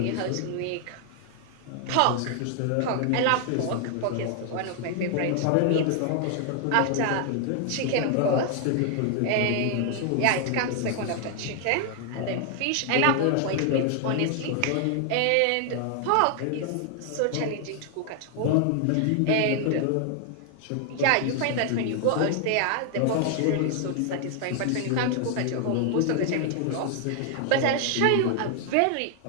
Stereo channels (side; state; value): both; different; correlation 0.00